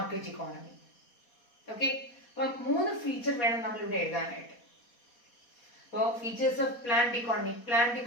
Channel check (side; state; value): right; late; 4.2 ms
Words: economy. Okay, അപ്പൊ 3 ഫീച്ചർ വേണം നമ്മൾ ഇവിടെ എഴുതാനായിട്ട്. അപ്പോൾ features of planned economy. Planned